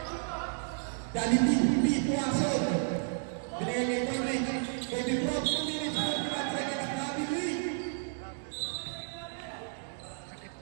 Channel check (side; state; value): left; silent; digital silence